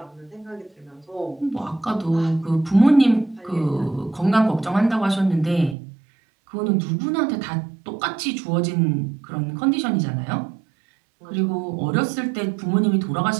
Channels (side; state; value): left; drops out; at 5.8 s